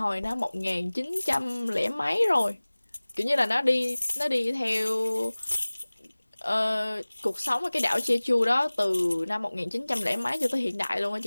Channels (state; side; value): inverted; both; correlation -1.00